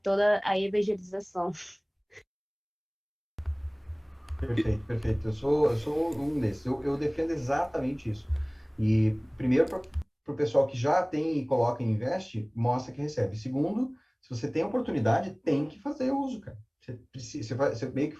toda a evangelização. Perfeito, perfeito. Eu sou um desses. Eu defendo exatamente isso. E, primeiro, para o pessoal que já tem e coloca e investe, mostra que recebe. Segundo, se você tem oportunidade, tem que fazer uso, cara. Você, precisa, você meio que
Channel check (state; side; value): identical; both; correlation 1.00